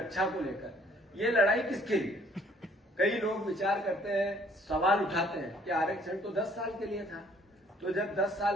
को लेकर ये लड़ाई किसके लिए? कई लोग विचार करते हैं, सवाल उठाते हैं कि आरक्षण तो 10 साल के लिए था, तो जब 10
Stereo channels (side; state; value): both; normal; correlation 0.60